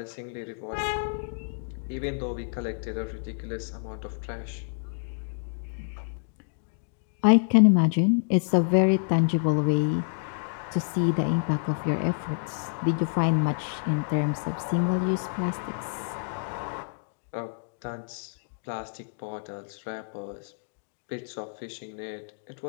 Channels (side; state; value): right; silent; digital silence